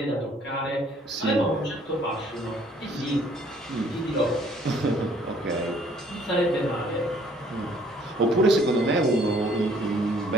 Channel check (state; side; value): normal; both; correlation 0.60